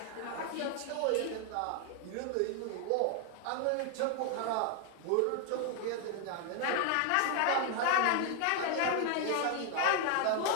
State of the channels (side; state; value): both; different; correlation 0.00